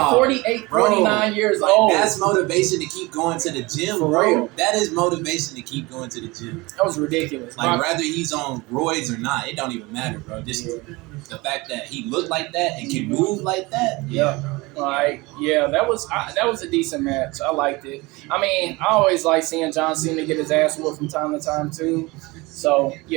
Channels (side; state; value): left; quieter; 23.3 dB